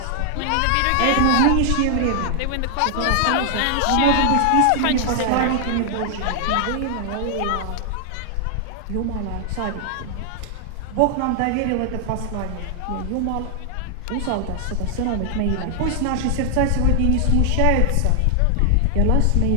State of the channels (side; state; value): both; different; correlation 0.00